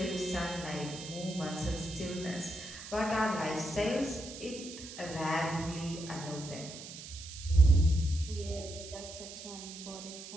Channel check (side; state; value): right; noise; hiss, 12 dB below the sound